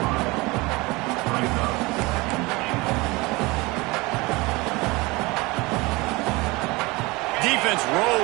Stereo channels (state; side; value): quieter; left; 23.5 dB